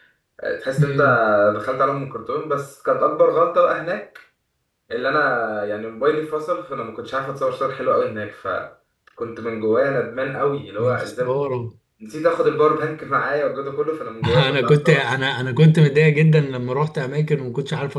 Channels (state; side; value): identical; both; correlation 1.00